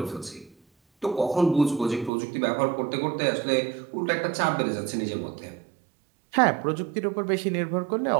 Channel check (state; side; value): drops out; left; at 2.1 s